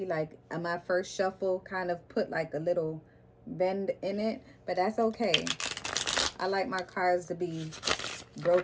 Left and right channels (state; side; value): identical; both; correlation 1.00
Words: Like, my first shuffle kind of put like a little bend in it, but that's okay. I like my cards to be